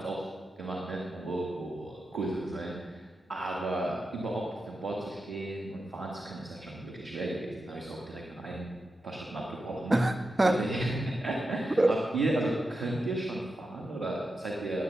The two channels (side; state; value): both; normal; correlation 0.89